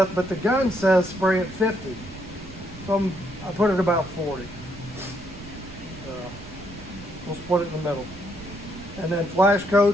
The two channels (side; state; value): right; noise; rumble, 16 dB below the sound